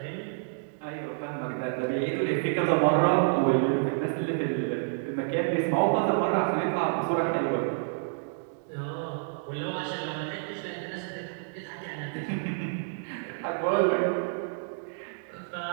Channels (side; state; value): left; silent; digital silence